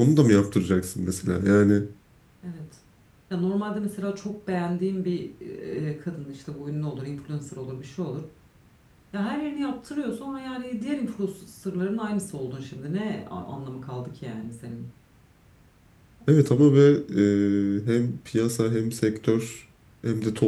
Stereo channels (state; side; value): identical; both; correlation 1.00